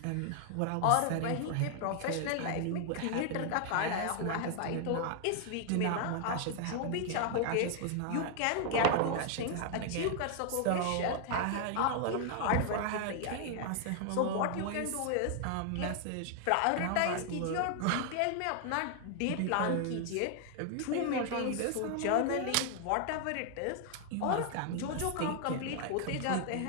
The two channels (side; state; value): both; different; correlation 0.00